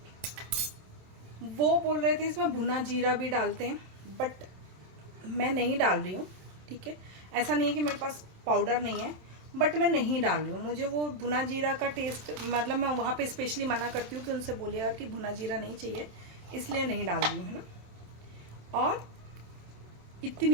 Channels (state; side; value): late; left; 27 ms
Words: वो बोल रहे थे इसमें भुना जीरा भी डालते हैं, बट मैं नहीं डाल रही हूँ, ठीक है। ऐसा नहीं है कि मेरे पास पाउडर नहीं है, बट मैं नहीं डाल रही हूँ। मुझे वो भुना जीरा का टेस्ट, मतलब मैं वहाँ पे स्पेशली मना करती हूँ कि उनसे बोलिएगा कि भुना जीरा नहीं चाहिए, इसलिए नहीं डाल रही हूँ, है ना। और